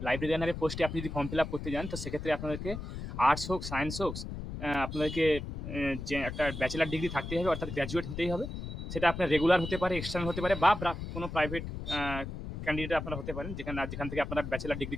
লাইব্রেরিয়ানের পোস্টে আপনি যদি ফর্ম ফিল আপ করতে যান, তো সেক্ষেত্রে আপনাদেরকে আর্টস হোক সায়েন্স হোক আপনাদেরকে যে একটা ব্যাচেলার ডিগ্রি থাকতেই হবে, অর্থাৎ গ্র্যাজুয়েট হতেই হবে। সেটা আপনার রেগুলার হতে পারে, এক্সটার্নাল হতে পারে, বা কোনো প্রাইভেট ক্যান্ডিডেট আপনারা হতে পারেন, যেখান থেকে আপনারা ব্যাচেলার ডিগ্রি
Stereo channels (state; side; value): noise; left; rumble, 7 dB below the sound